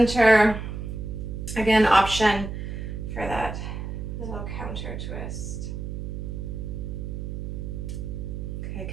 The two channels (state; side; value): noise; right; hum, 6 dB below the sound